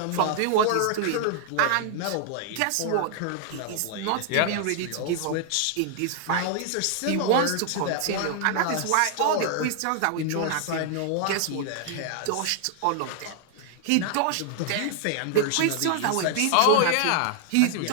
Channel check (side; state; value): both; different; correlation 0.00